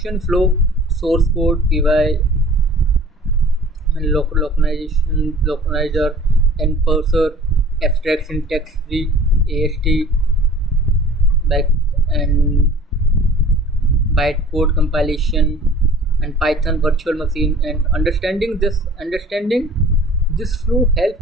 flow, source code, PY, and localizer, and parser, abstract syntax tree, AST, back and bytecode compilation and Python virtual machine. And understanding this flow helps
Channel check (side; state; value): both; normal; correlation 0.46